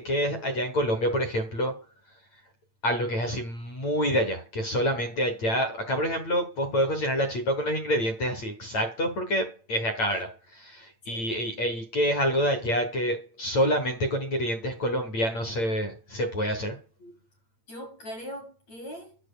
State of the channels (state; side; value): late; right; 8.8 ms